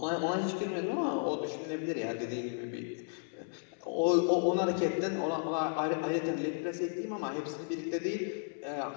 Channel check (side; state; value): right; silent; 55 dB below the other